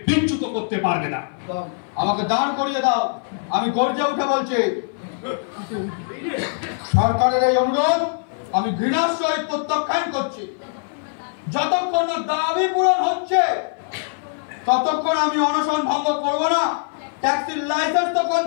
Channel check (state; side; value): silent; right; 58 dB below the other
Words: বিচ্যুত করতে পারবে না। আমাকে দাঁড় করিয়ে দাও, আমি গর্জে উঠে বলছি, সরকারের এই অনুরোধ আমি ঘৃণার সহিত প্রত্যাখ্যান করছি। যতক্ষণ না দাবি পূরণ হচ্ছে ততক্ষণ আমি অনশন ভঙ্গ করব না। ট্যাক্সির লাইসেন্স তখন